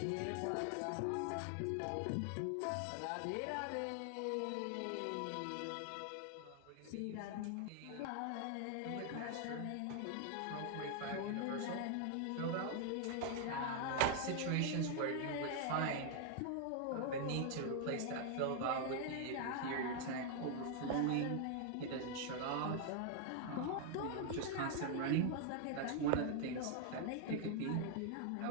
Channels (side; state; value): both; different; correlation 0.00